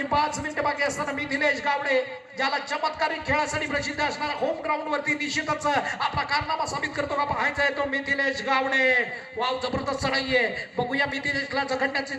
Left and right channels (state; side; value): identical; both; correlation 1.00